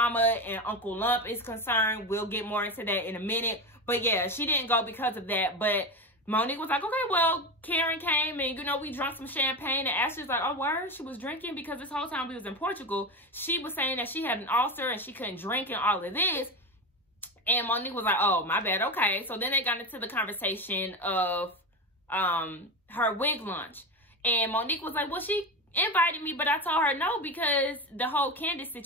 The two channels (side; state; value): both; normal; correlation 0.20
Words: and Uncle Lump is concerned. We'll get more into that in a minute. But, yeah, she didn't go because of that. But Monique was like, okay, well, Karen came and, you know, we drank some champagne. And Ashley's like, oh, word? She was drinking because this whole time we was in Portugal, she was saying that she had an ulcer and she couldn't drink and all of this. And Monique was like, oh, my bad. Okay. So then they got into the conversation of her wig launch. And Monique was like, well, she invited me, but I told her no because the whole Candace